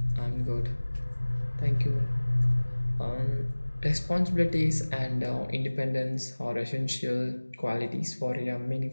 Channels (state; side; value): inverted; both; correlation -1.00